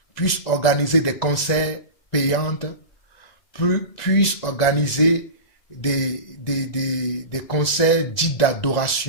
puissent organiser des concerts payants, puissent organiser des concerts dits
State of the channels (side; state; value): right; late; 2.0 ms